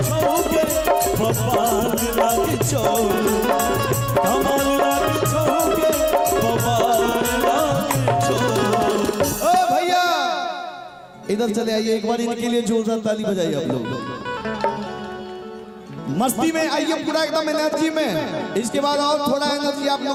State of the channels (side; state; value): both; identical; correlation 1.00